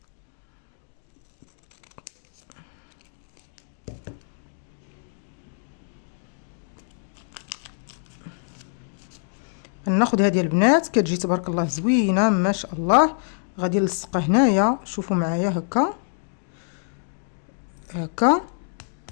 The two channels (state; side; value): silent; right; 61 dB below the other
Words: ناخذ هذه البنات كتجي تبارك الله زوينه ما شاء الله. غادي نلصقها هنايا شوفوا معايا هكا هكا